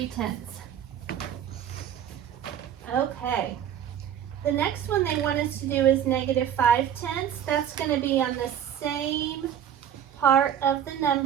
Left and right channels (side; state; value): left; quieter; 9.5 dB